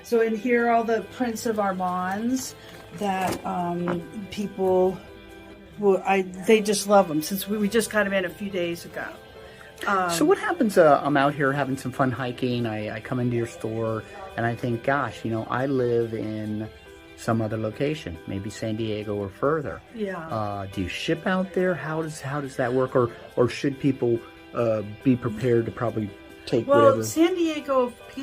So in here are all the prints of Armands that people they just love them, since we just got them in a few days ago. So what happens, I'm out here having some fun hiking, I come into your store, and I think, gosh, you know, I live in some other location, maybe San Diego or further. Yeah. Do you ship out there? How does that work? Or should people be prepared to probably take whatever? San Diego,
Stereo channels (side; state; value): both; identical; correlation 1.00